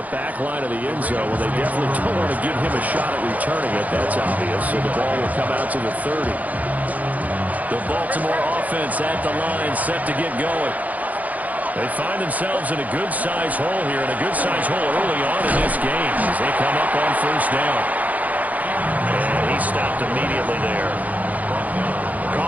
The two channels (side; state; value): left; late; 0.077 ms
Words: back line of the end zone. Well, they definitely don't want to give him a shot at returning it. That's obvious. So the ball will come out to the 30. The Baltimore offense at the line, set to get going. They find themselves in a good-sized hole here, and a good-sized hole early on in this game as they come up on first down. And he stopped immediately there.